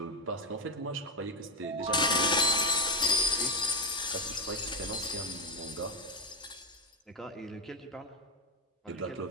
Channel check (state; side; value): normal; both; correlation 0.09